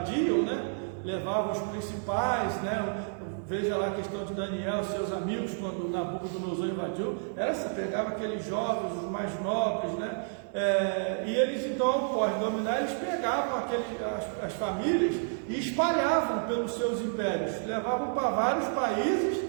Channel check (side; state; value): left; silent; digital silence